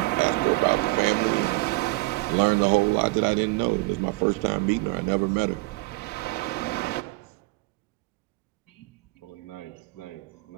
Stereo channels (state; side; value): quieter; left; 23.5 dB